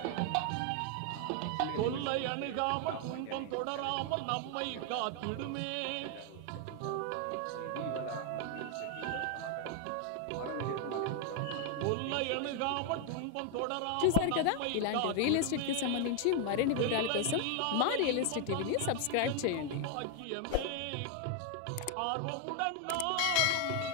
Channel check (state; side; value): different; both; correlation 0.01